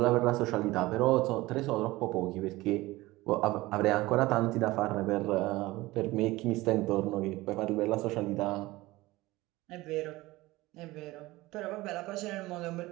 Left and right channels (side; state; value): left; quieter; 19.5 dB